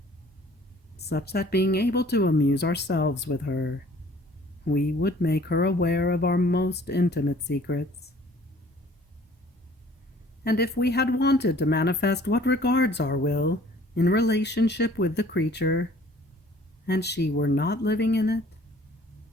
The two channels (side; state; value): both; normal; correlation 0.53